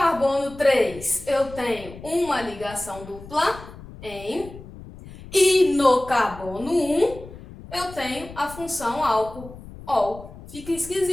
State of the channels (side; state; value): left; noise; rumble, 16 dB below the sound